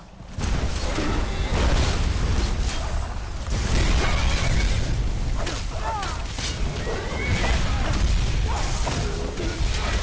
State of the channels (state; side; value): identical; both; correlation 1.00